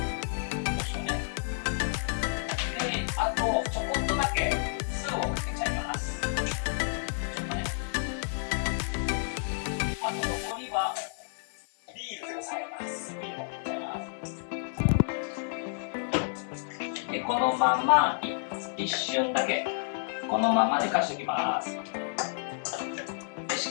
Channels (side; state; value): right; silent; 58 dB below the other